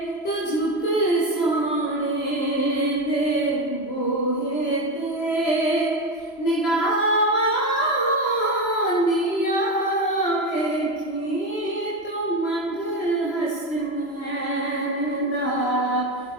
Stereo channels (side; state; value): right; late; 3.0 ms